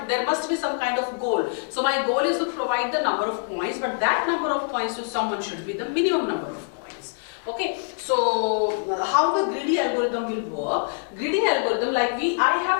must be some kind of goal. So my goal is to provide the number of coins, but that number of coins to someone should be the minimum number of coins. Okay, so how the greedy algorithm will work? Greedy algorithm, like I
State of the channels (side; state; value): right; silent; digital silence